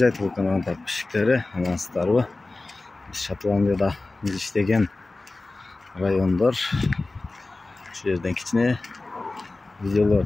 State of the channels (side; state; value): right; quieter; 3.2 dB